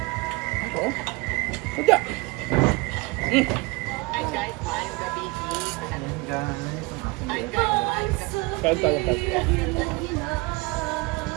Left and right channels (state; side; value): quieter; left; 25.1 dB